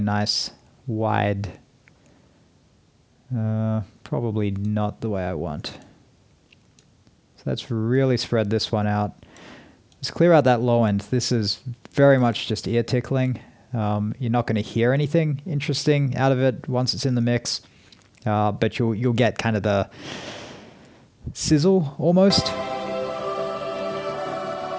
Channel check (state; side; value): identical; both; correlation 1.00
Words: wide... probably not the way I want. So let's really spread this one out. Let's clear out that low end. This is very much just ear tickling. You're not going to hear anything interesting out of it once it's in the mix, but you'll get kind of the sizzle almost.